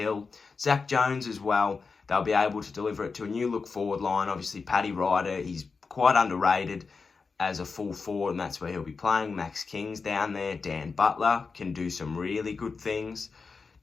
Zach Jones as well, they'll be able to deliver it to a new look forward line. Obviously, Paddy Ryder, he's quite underrated as a full forward, and that's where he'll be playing. Max King's down there. Dan Butler can do some really good things.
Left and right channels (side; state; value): right; quieter; 4.7 dB